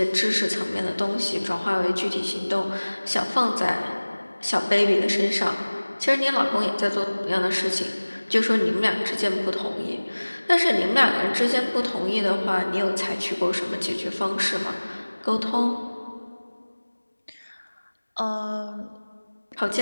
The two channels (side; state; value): both; inverted; correlation -1.00